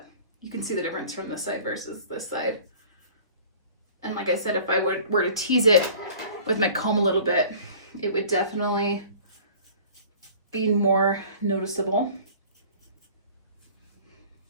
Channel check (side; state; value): both; inverted; correlation -0.46